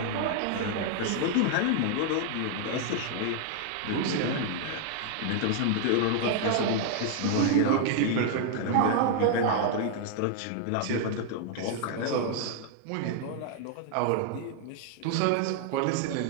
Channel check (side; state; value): both; different; correlation 0.00